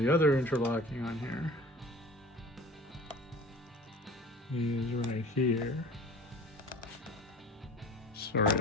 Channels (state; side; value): normal; both; correlation 0.42